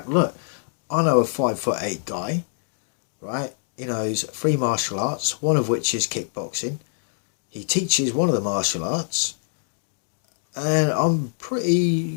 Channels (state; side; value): silent; right; digital silence